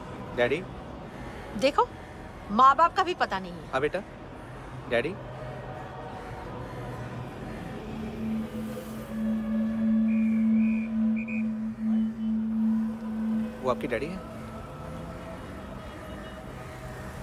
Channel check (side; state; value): both; identical; correlation 1.00